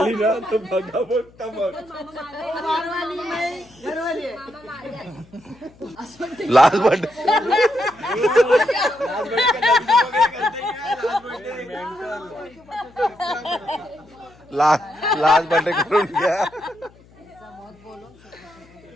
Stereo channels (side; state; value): left; noise; hum, 27 dB below the sound